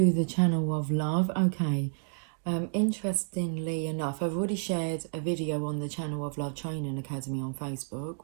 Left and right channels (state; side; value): silent; left; digital silence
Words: the channel of love. Okay, interestingly enough, I've already shared a video on the channel of Love Training Academy on Facebook,